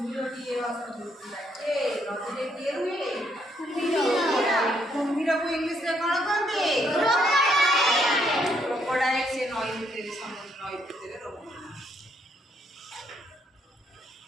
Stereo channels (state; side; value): normal; both; correlation 0.72